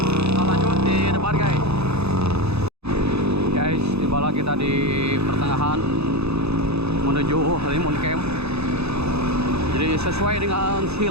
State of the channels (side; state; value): left; late; 0.79 ms